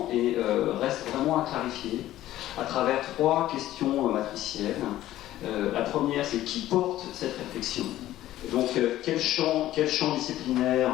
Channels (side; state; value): right; quieter; 14.2 dB